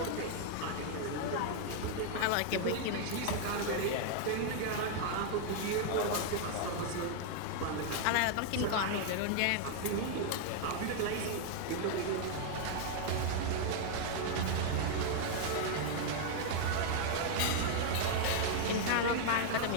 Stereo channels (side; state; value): both; different; correlation 0.00